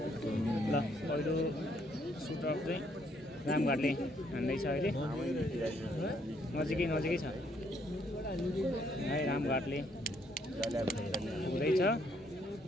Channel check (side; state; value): both; normal; correlation 0.70